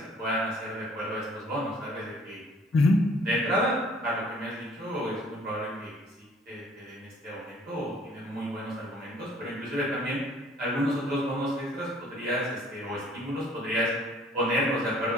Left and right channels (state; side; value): normal; both; correlation 0.57